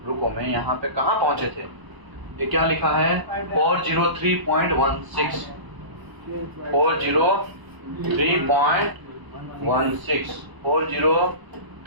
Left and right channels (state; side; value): late; left; 1.0 ms